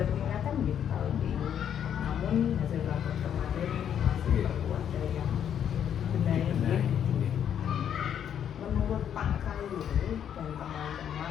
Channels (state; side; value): quieter; right; 9.1 dB